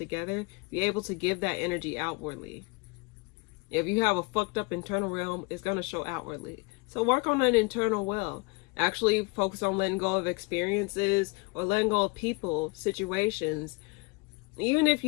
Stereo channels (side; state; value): right; quieter; 27.6 dB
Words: be able to give that energy outwardly. If you have a fucked up internal realm, it's going to show outwardly. So work on that internal well. Actually focus on letting go of experiences or letting go of people, situations. Even if